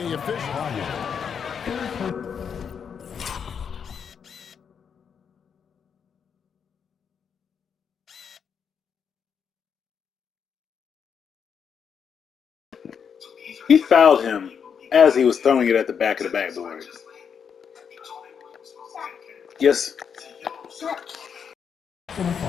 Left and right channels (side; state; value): right; quieter; 7.1 dB